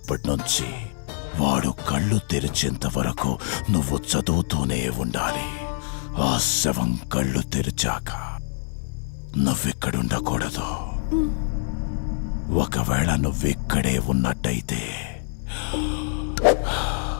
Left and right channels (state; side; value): silent; right; digital silence